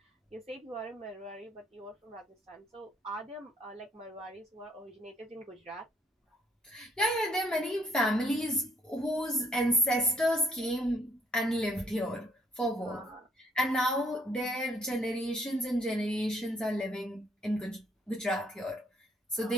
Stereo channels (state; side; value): normal; both; correlation 0.68